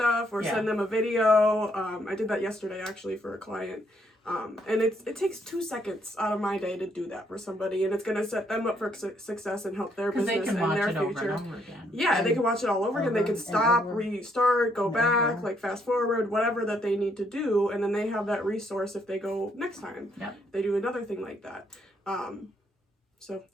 or send them a video. I did that yesterday actually for a client. And it takes 2 seconds out of my day to do that for somebody, and it's going to set them up for success and help their business and their future. Over and over again. Yeah, they can watch it all over again. They can stop, restart, go back, fast forward, whatever that they need to do, and then they have that resource if they go next time. Yep. They do another thing like that. So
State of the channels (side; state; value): both; normal; correlation 0.71